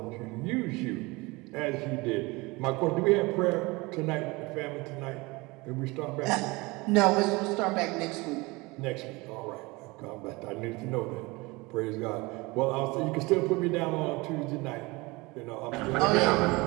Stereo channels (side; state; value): left; quieter; 23.9 dB